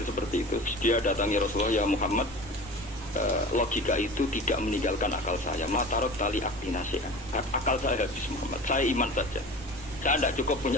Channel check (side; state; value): both; normal; correlation 0.37